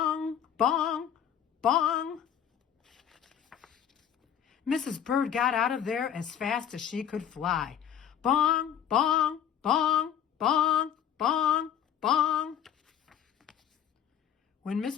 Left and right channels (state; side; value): quieter; right; 9.3 dB